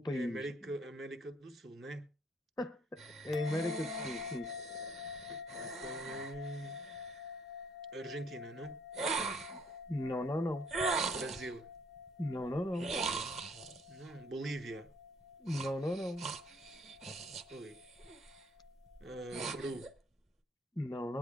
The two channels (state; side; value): normal; both; correlation 0.64